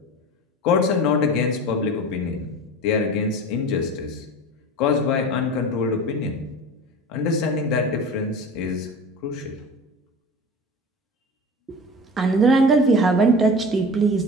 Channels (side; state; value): both; normal; correlation 0.34